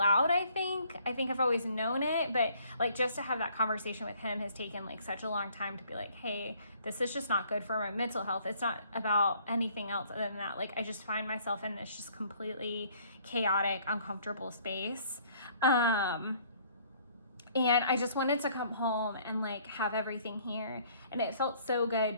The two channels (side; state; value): both; inverted; correlation -0.60